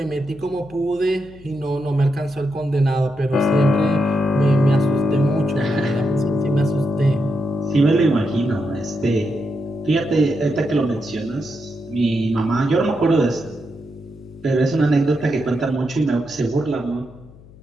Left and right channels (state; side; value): noise; left; hum, 22 dB below the sound